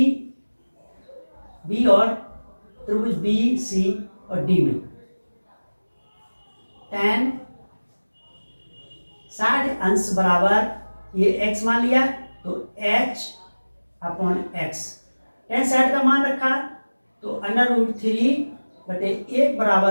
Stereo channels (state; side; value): inverted; both; correlation -1.00